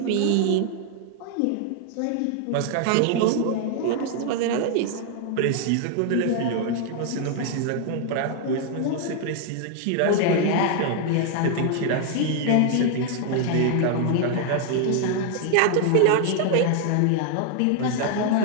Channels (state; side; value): different; both; correlation 0.00